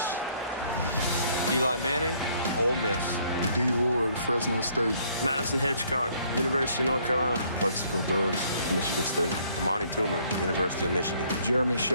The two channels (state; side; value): inverted; both; correlation -0.64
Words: Eli Manning, Ole Miss. D. Ward, Fresno State. Madison Hitchcock, University of North Carolina. Plexico Burris, Michigan State. Amani Toomer, University of Michigan. Jeremy